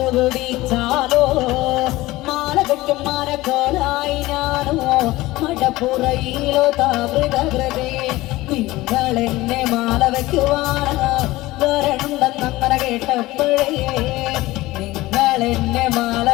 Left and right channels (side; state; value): right; quieter; 18.6 dB